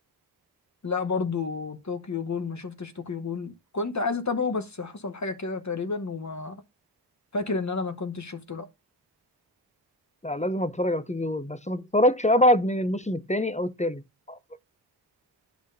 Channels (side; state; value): both; normal; correlation 0.21